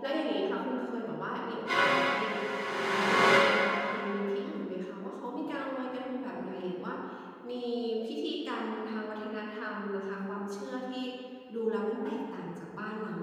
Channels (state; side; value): identical; both; correlation 1.00